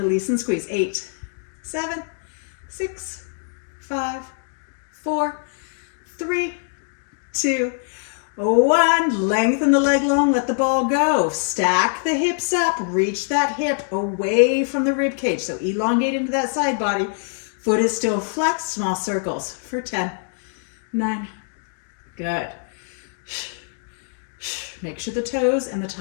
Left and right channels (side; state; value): right; silent; 63 dB below the other